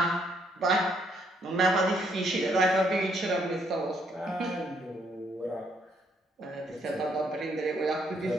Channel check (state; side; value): normal; both; correlation 0.70